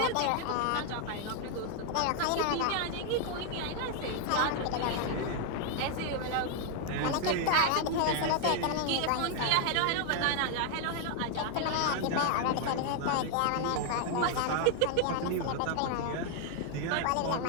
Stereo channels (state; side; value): different; both; correlation 0.00